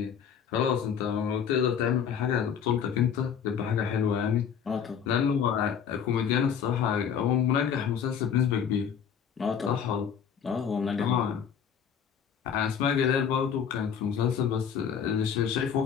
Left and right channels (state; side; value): quieter; right; 7.7 dB